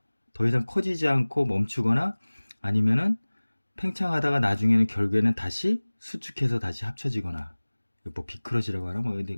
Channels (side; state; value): both; inverted; correlation -1.00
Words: 더 이상 커지지 않고 멈추거나 아니면은 팽창하다가 나중에는 결국에는 다시 수축해서 다시 합쳐지거나 뭐 비크러시라고 하나 뭐